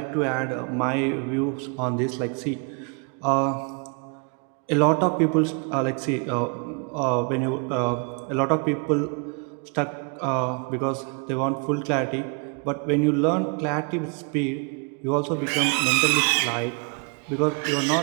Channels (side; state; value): left; quieter; 36.1 dB